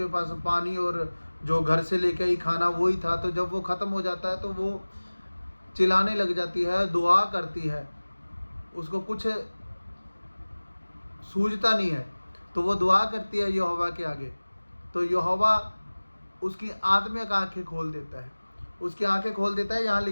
पास पानी और जो घर से लेके आई खाना वही था। तो जब वो ख़त्म हो जाता है, तो वो चिल्लाने लग जाती है, दुआ करती है, उसको कुछ सूझता नहीं है, तो वो दुआ करती है यहोवा के आगे। तो यहोवा उसकी आत्मिक आंखें खोल देता है, उसकी आंखें खोल देता है। यहाँ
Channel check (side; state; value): both; inverted; correlation -1.00